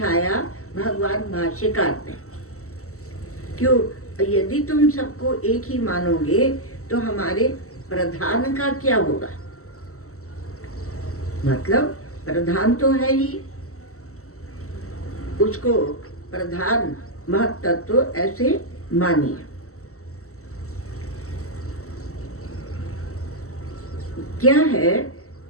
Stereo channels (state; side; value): late; right; 0.64 ms